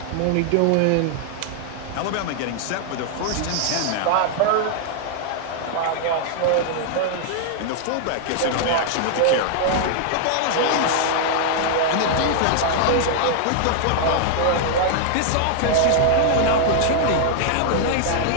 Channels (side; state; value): both; different; correlation 0.00